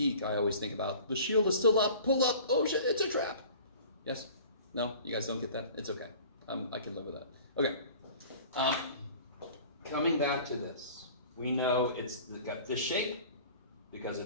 I always think about the shield is still up, pull up, oh shit, it's a trap. Yes? No? You guys don't get that? It's okay. I can live with that. Okay. Coming back to this, we know it's got this shape because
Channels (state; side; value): inverted; both; correlation -0.44